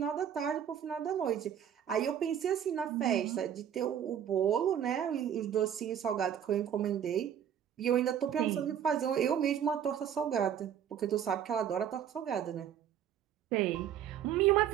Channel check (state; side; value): quieter; left; 9.3 dB